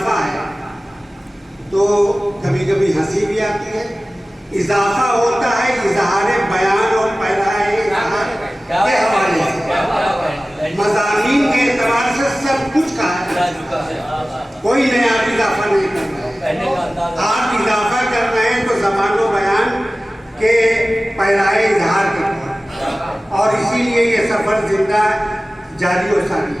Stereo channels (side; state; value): both; normal; correlation 0.97